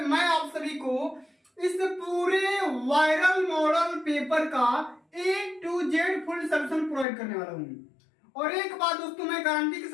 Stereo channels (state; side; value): drops out; right; at 7.1 s